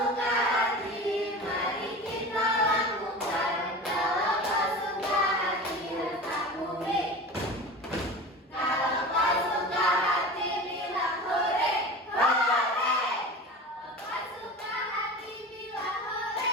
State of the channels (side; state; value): both; normal; correlation 0.33